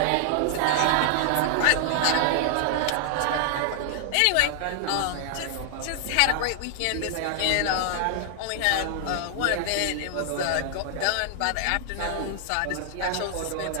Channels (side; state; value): both; different; correlation 0.00